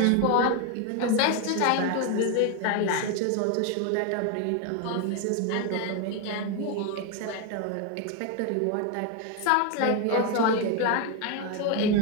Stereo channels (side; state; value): both; different; correlation 0.02